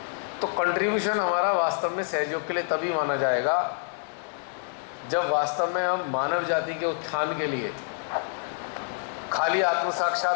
तो कंट्रीब्यूशन हमारा वास्तव में सहयोग के लिए तभी माना जाएगा जब वास्तव में हम मानव जाति के उत्थान के लिए, खाली आत्म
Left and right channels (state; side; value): silent; right; digital silence